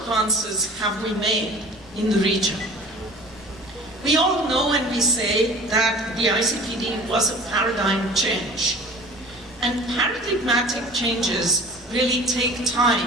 have we made in the region? We all know and we say that the ICPD was a paradigm change. And paradigmatic changes really take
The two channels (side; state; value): both; normal; correlation 0.42